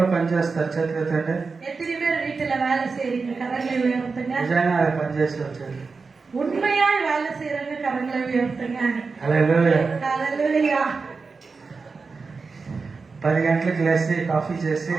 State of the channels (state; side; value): quieter; left; 4.5 dB